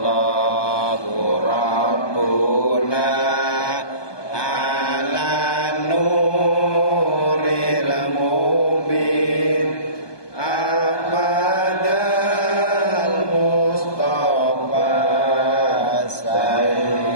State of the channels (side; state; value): right; late; 1.2 ms